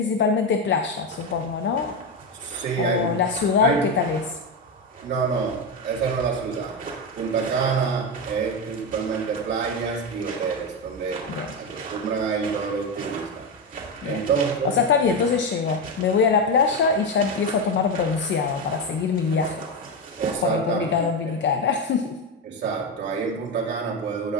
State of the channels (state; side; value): normal; both; correlation 0.12